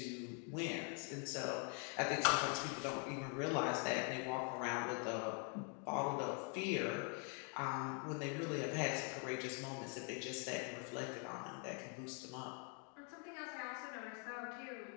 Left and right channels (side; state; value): right; quieter; 38.9 dB